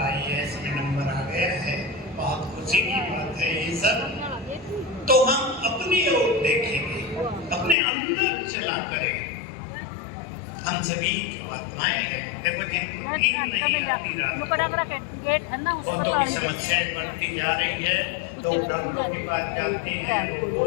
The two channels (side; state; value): right; drops out; at 7.8 s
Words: IAS में नंबर आ गया है। बहुत खुशी की बात है ये सब। तो हम अपनी ओर देखेंगे, अपने अंदर चला करें। हम सभी आत्माएं हैं। देखो जिनकी समस्याएं बढ़ती जा रही है, तो डॉक्टर के पास जाते हैं, वो